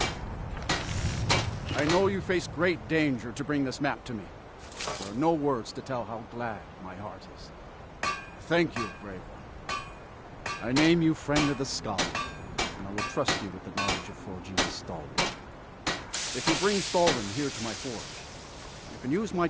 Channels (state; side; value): identical; both; correlation 1.00